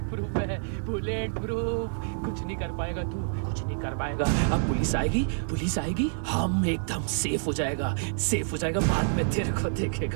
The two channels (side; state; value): left; silent; digital silence